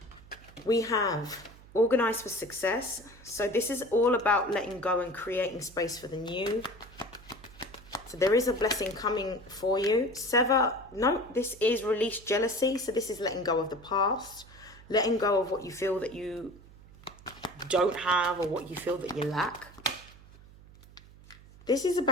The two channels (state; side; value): noise; right; hum, 22 dB below the sound